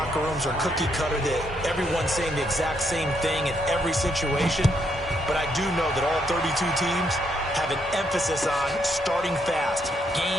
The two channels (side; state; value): both; normal; correlation 0.75